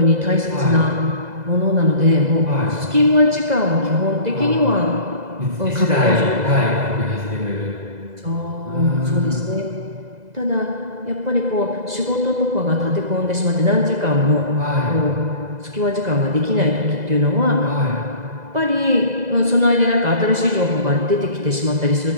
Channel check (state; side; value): late; left; 2.0 ms